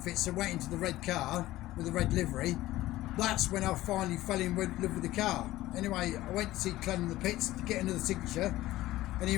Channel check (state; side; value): quieter; right; 16.3 dB